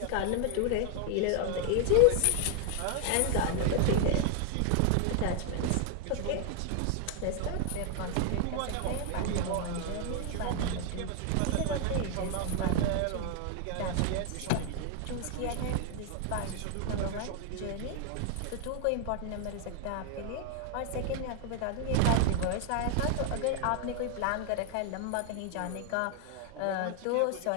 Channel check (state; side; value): different; both; correlation 0.00